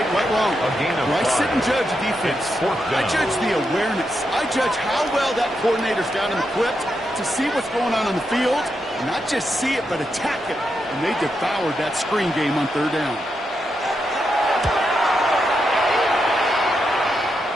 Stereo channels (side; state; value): both; normal; correlation 0.84